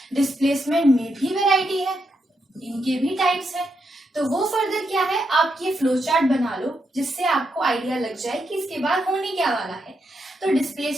डिस्प्लेसमेंट में भी वैरायटी है, इनके भी टाइप्स है, तो वो फर्दर क्या है, आप ये फ्लो चार्ट बना लो जिससे आपको आइडिया लग जाए कि इसके बाद होने क्या वाला है। तो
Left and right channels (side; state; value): both; normal; correlation 0.82